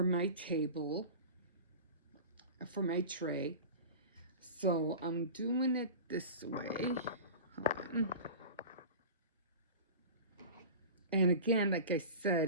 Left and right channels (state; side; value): inverted; both; correlation -0.33